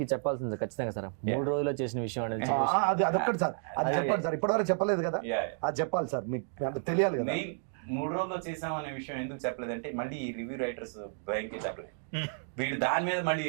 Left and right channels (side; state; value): left; silent; digital silence